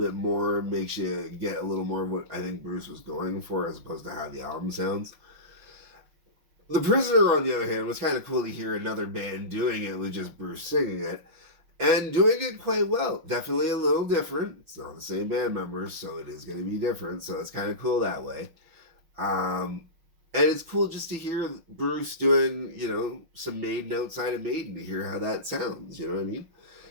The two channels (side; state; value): left; late; 6.0 ms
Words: more, makes you get a little more of what I think Bruce was going for as opposed to how the album sounds. The Prisoner, on the other hand, was kind of cool to hear another band doing it with just Bruce singing it. And doing it quite well. Definitely a little different. It's not the same band members, so it is going to be different. So it's kind of cool that way. And it's cool just to hear Bruce doing, some Maiden outside of Maiden, to hear how that sounds. You know what I mean?